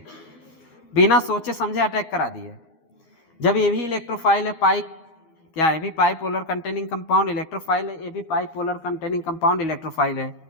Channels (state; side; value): late; right; 13 ms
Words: बिना सोचे समझे अटैक करा दिए। जब ये भी इलेक्ट्रोफाइल है, क्या है? भी पाइपोलर कंटेनिंग कंपाउंड इलेक्ट्रोफाइल है, ये भी पाइपोलर कंटेनिंग कंपाउंड इलेक्ट्रोफाइल है।